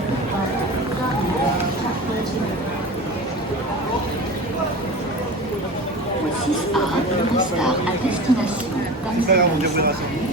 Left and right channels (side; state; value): both; normal; correlation 0.32